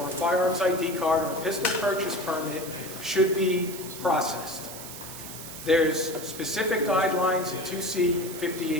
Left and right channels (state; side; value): noise; right; hiss, 11 dB below the sound